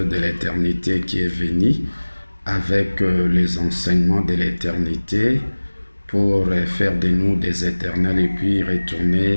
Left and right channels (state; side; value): inverted; both; correlation -1.00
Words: l'éternité qui est venu avec les enseignements de l'éternité pour faire de nous des éternels et puis